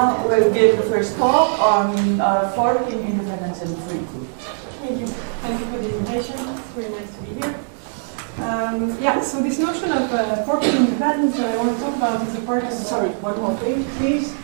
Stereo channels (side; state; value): left; silent; 65 dB below the other